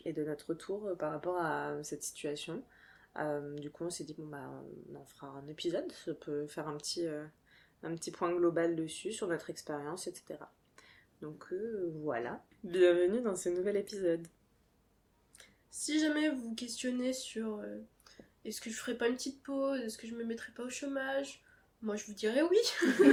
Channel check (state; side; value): identical; both; correlation 1.00